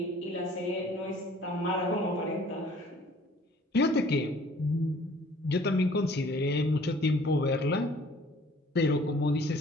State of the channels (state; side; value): normal; both; correlation 0.54